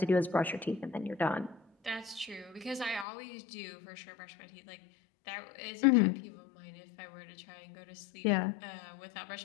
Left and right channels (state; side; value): drops out; right; at 3.1 s